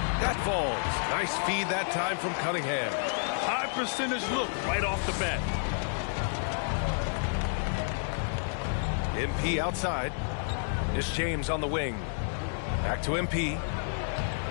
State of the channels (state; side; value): silent; right; digital silence